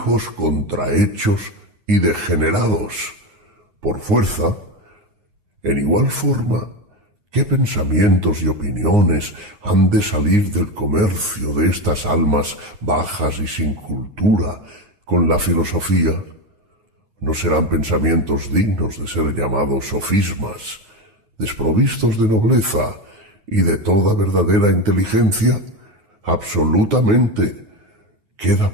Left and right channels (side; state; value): left; late; 9.7 ms